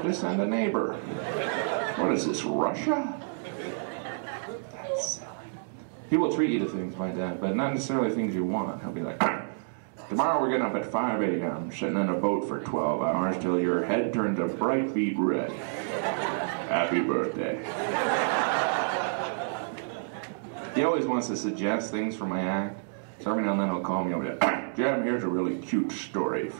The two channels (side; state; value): left; silent; digital silence